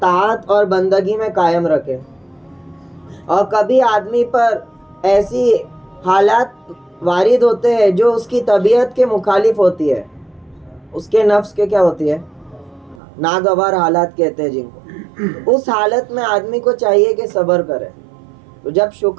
اور بندگی میں قائم رکھے. اور کبھی آدمی پر ایسی حالات وارد ہوتے ہیں جو اس کی طبیعت کے مخالف ہوتی ہے، اس کے نفس کے کیا ہوتی ہے، ناگوار حالات کہتے ہیں جن کو. اس حالت میں آدمی کو چاہیے کہ صبر کرے. تو جب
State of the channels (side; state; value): left; drops out; at 13.0 s